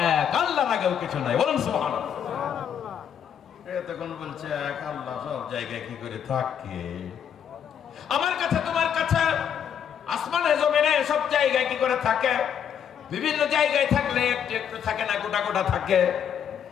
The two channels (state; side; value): quieter; right; 8.5 dB